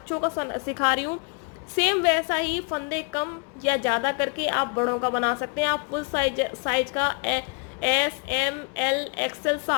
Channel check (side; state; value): right; quieter; 38.2 dB